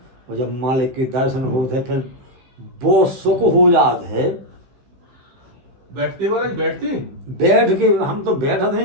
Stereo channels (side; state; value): left; late; 15 ms